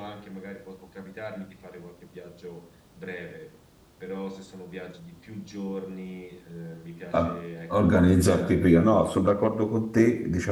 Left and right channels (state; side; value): identical; both; correlation 1.00